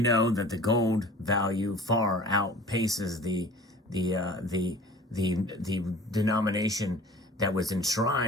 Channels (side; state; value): both; normal; correlation 0.44